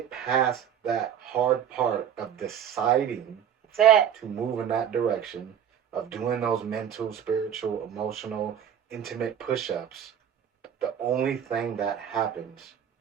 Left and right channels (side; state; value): left; quieter; 9.1 dB